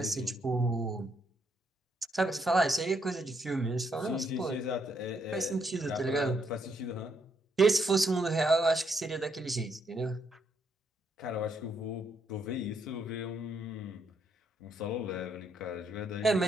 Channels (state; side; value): normal; both; correlation 0.75